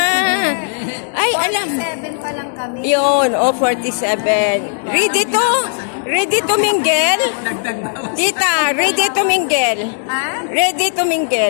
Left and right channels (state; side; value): silent; right; digital silence